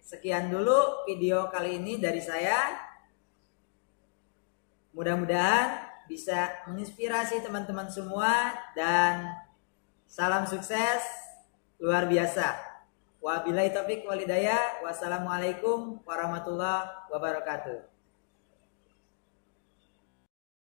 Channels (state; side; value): silent; right; digital silence